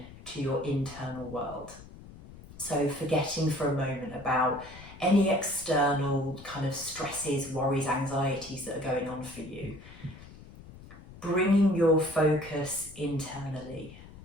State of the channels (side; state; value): left; noise; rumble, 18 dB below the sound